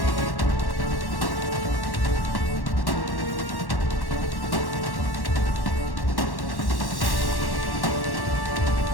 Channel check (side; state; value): right; late; 1.1 ms